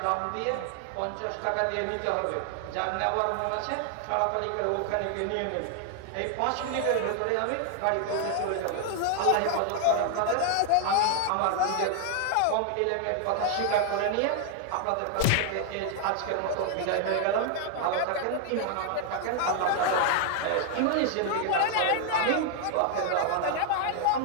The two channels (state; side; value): different; both; correlation 0.00